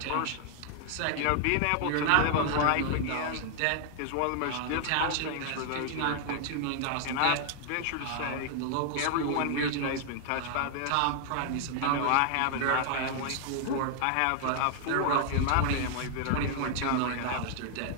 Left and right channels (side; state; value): both; different; correlation 0.00